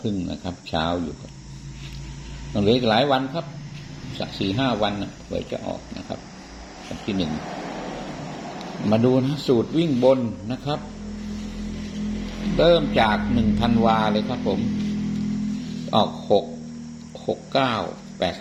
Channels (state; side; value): identical; both; correlation 1.00